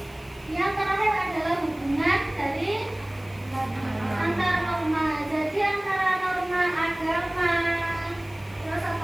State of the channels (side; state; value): left; noise; hiss, 26 dB below the sound